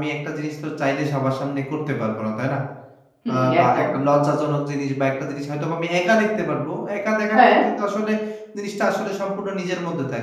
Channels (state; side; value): identical; both; correlation 1.00